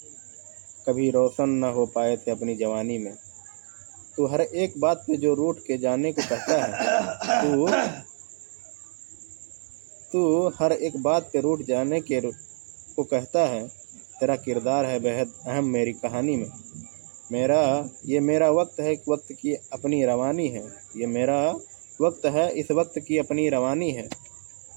कभी रोशन न हो पाए थे अपनी जवानी में। तू हर एक बात पे जो रूठ के जाने को कहता है, तू हर एक बात पे रूठ जाने के को कहता है। तेरा किरदार है बेहद अहम मेरी कहानी में। मेरा वक्त है, वक्त की अपनी रवानी है। ये मेरा वक्त है, इस वक्त की अपनी रवानी है।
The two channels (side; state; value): left; silent; digital silence